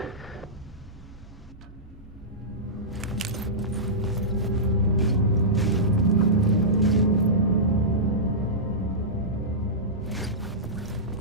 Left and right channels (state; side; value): normal; both; correlation -0.17